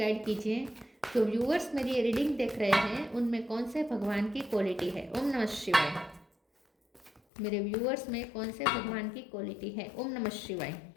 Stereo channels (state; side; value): drops out; right; at 7.2 s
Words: कीजिए। जो व्यूअर्स मेरी ये रीडिंग देख रहे हैं उनमें कौन से भगवान की क्वालिटी है। ओम नमः शिवाय। मेरे व्यूअर्स में कौन से भगवान की क्वालिटी है। ओम नमः शिवाय।